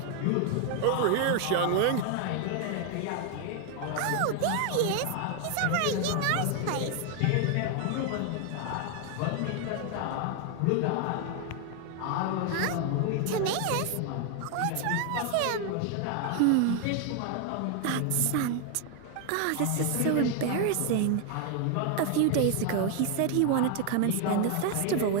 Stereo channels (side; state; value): both; different; correlation 0.00